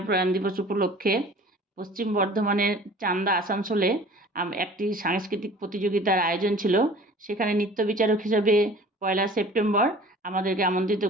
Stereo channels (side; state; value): both; normal; correlation 0.46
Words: প্রয়াণ দিবস উপলক্ষে পশ্চিম বর্ধমানের চান্দা আসানসোলে একটি সাংস্কৃতিক প্রতিযোগিতার আয়োজন ছিল। সেখানে নৃত্য বিচারক হিসাবে ১লা সেপ্টেম্বর আমাদেরকে আমন্ত্রিত